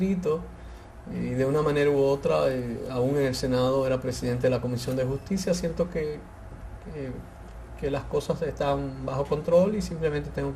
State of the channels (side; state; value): both; identical; correlation 1.00